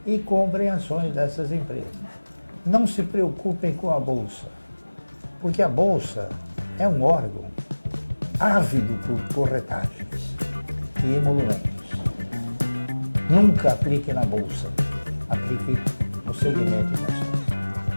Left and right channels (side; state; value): both; inverted; correlation -1.00